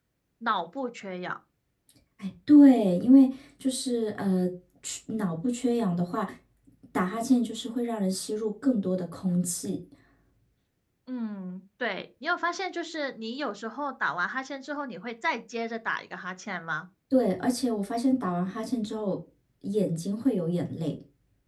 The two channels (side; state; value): both; identical; correlation 1.00